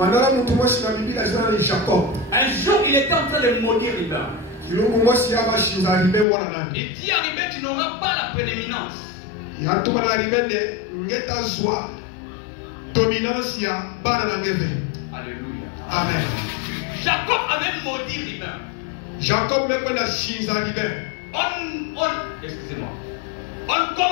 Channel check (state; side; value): drops out; right; at 6.2 s